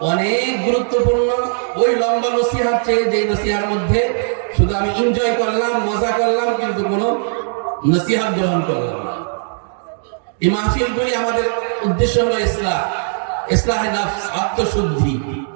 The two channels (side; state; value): left; silent; digital silence